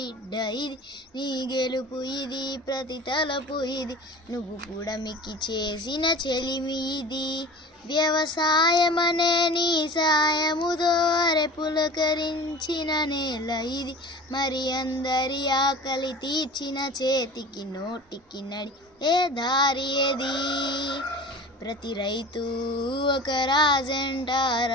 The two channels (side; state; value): both; normal; correlation 0.38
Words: ఇది నీ గెలుపు ఇది ప్రతి తలపు ఇది నువ్వు కూడా మిక్కి చేసిన చెలిమి ఇది వ్యవసాయమనే నీ సాయముతో అరె పులకరించిన నేల ఇది మరి అందరి ఆకలి తీర్చిన చేతికి నోటికి నడి ఏ దారి ఏది ప్రతి రైతు ఒక రాజంట